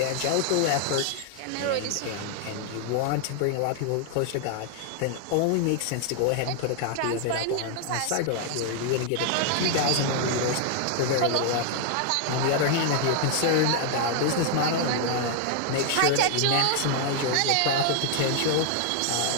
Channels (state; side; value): different; both; correlation 0.00